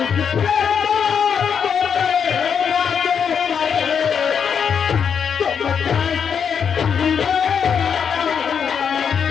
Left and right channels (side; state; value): right; quieter; 7.1 dB